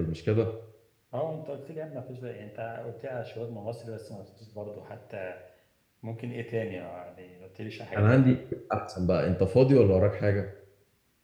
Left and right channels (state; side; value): identical; both; correlation 1.00